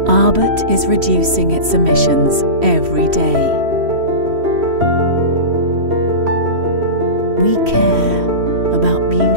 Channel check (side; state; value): left; late; 3.1 ms